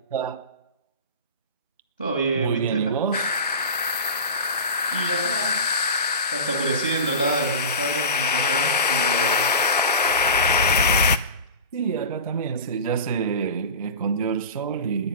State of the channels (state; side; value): inverted; both; correlation -0.30